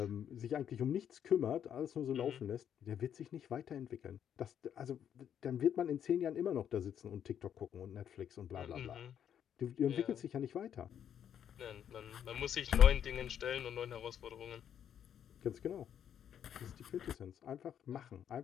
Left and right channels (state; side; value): quieter; right; 9.2 dB